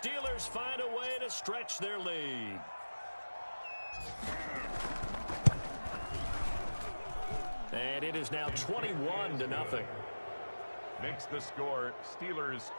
find a way to stretch their lead. And it is now 21-0. Makes the score Steelers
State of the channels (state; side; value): inverted; both; correlation -1.00